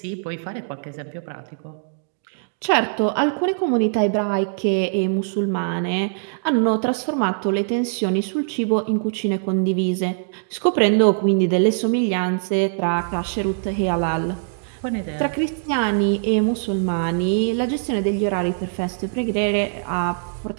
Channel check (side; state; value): left; silent; digital silence